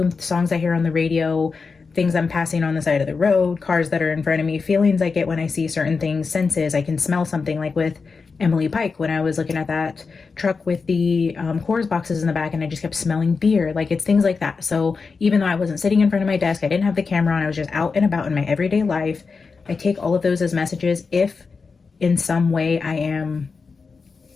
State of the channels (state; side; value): quieter; right; 4.8 dB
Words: songs I hear on the radio, things I'm passing on the side of the road, cars that are in front of me, feelings I get when I see certain things, senses. I can smell something, like with Emily Pike when I was looking at that truck with the Coors boxes in the back and I just kept smelling beer. Like, it's things like that. So even though I wasn't sitting in front of my desk, I didn't have the camera on, I was just out and about in my everyday life, I take all of those as messages if in some way I am